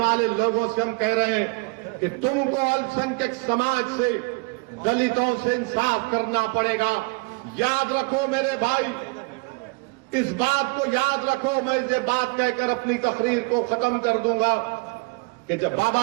लोगों से हम कह रहे हैं कि तुमको अल्पसंख्यक समाज से, दलितों से इंसाफ करना पड़ेगा। याद रखो मेरे भाई, इस बात को याद रखो। मैं ये बात कहकर अपनी तकरीर को खत्म कर दूंगा कि जब बाबा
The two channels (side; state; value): left; quieter; 30.0 dB